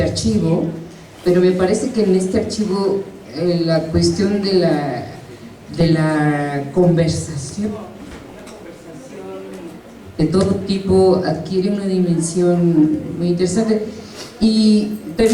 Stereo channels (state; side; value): identical; both; correlation 1.00